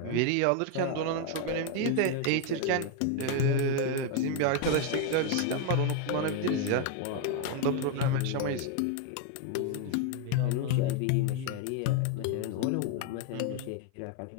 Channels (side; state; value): both; different; correlation 0.01